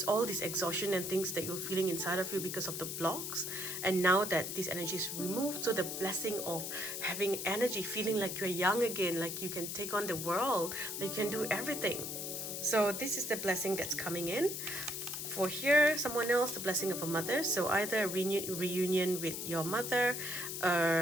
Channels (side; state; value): left; noise; hiss, 5 dB below the sound